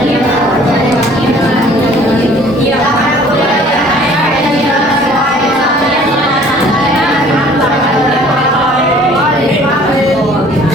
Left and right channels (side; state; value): both; normal; correlation 0.53